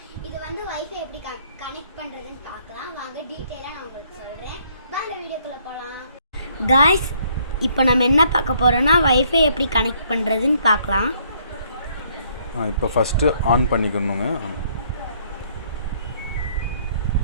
இது வந்து வைஃபை எப்படி கனெக்ட் பண்றதுன்னு பார்க்கலாம். வாங்க டீடைலா நான் உங்களுக்கு சொல்றேன். வாங்க வீடியோக்குள்ள போலாம். गाइस, இப்போ நம்ம என்ன பார்க்க போறோம்னா வைஃபை எப்படி கனெக்ட் பண்றதுன்னு பார்க்கலாம். இப்போ ஃபர்ஸ்ட் ஆன் பண்ணிக்கணுங்க.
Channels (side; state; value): both; inverted; correlation -0.66